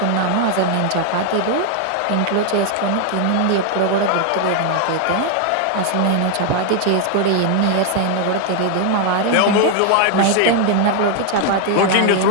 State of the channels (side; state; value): both; different; correlation 0.00